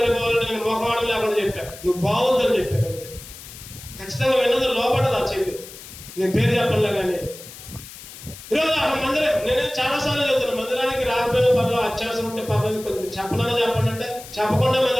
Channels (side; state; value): left; noise; hiss, 15 dB below the sound